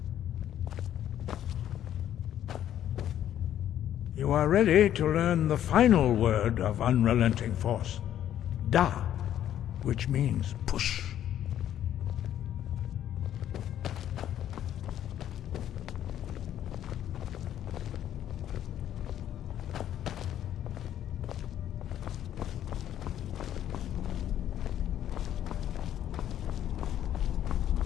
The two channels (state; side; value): quieter; right; 11.1 dB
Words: You are ready to learn the final word of Unrelenting Force. Da, which means push.